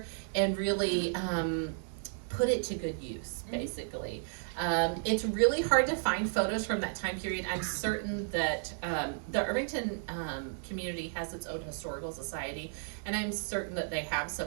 and really put it to good use, basically. It's really hard to find photos from that time period. I'm certain that the Irvington community has its own historical society, and I'm certain that they have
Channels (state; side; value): silent; left; digital silence